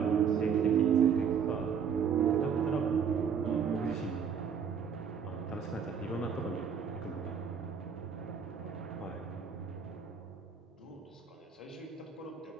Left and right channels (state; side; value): quieter; left; 7.1 dB